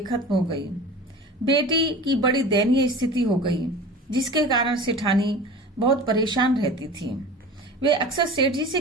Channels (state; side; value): normal; both; correlation 0.37